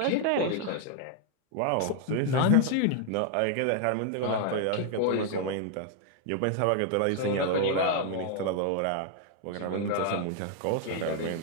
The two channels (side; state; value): both; different; correlation 0.00